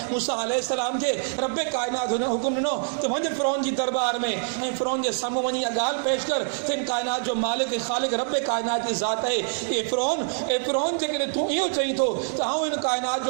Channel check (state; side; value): silent; left; digital silence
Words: मूसा अलैहिस्सलाम खे रब्बे कायनात हुन हुकुम ॾिनो त वञ फ़िरौन जी दरबार में ऐं फ़िरौन जे साम्हूं वञी इहा ॻाल्हि पेश कर त इन कायनात जो मालिक ख़ालिक रब्बे कायनात जी ज़ात आहे। ए फ़िरौन जेकॾहिं तूं इहो चईं थो त आउं इन कायनात